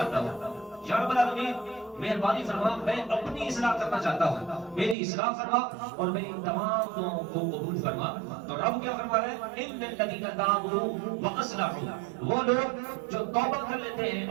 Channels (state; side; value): drops out; left; at 5.0 s